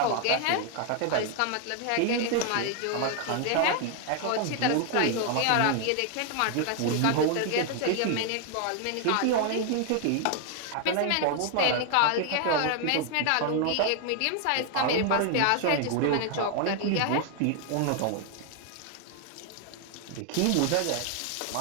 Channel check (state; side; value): different; both; correlation 0.00